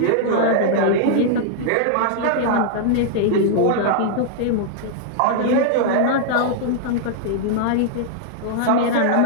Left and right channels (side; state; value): both; different; correlation -0.01